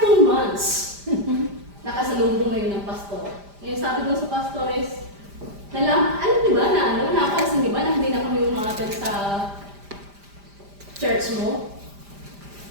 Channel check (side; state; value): left; late; 5.0 ms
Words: 2 months, nakasalubong ngayon ng pastor. Ngayon sabi doon sa pastor is, napansin di ba na hindi na kami umaten sa church mo?